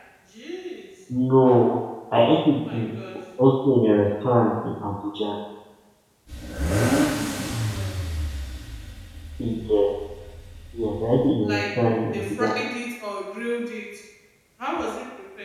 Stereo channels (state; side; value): identical; both; correlation 1.00